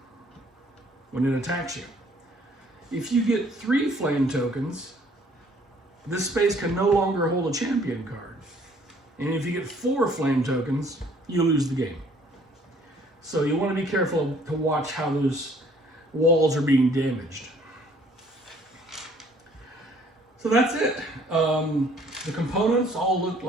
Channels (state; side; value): normal; both; correlation 0.59